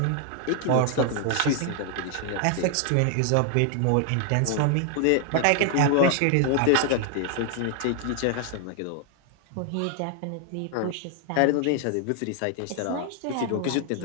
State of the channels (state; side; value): different; both; correlation 0.00